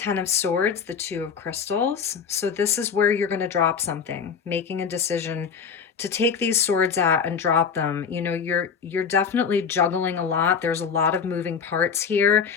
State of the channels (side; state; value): right; quieter; 6.4 dB